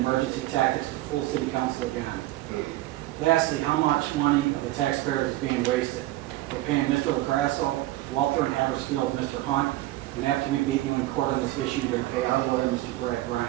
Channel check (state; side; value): quieter; left; 16.8 dB